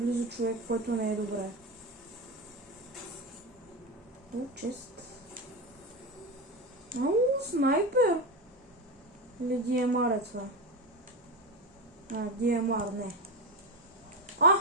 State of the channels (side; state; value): both; normal; correlation 0.17